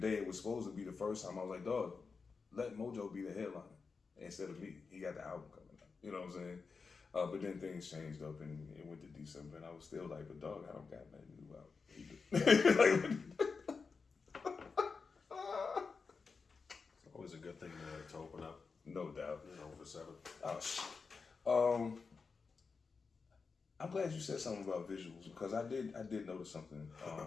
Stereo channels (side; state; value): right; quieter; 4.9 dB